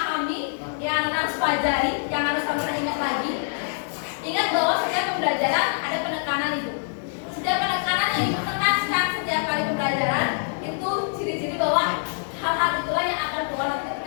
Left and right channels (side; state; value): right; silent; 59 dB below the other